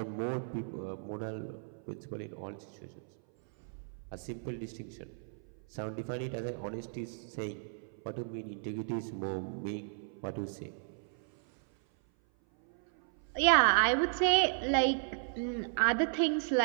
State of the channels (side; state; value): left; silent; 55 dB below the other